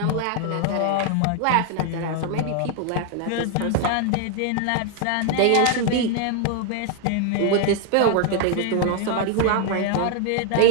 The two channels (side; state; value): both; different; correlation 0.00